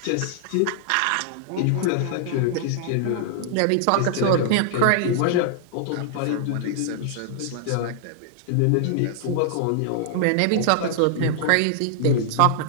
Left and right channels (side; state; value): both; different; correlation -0.01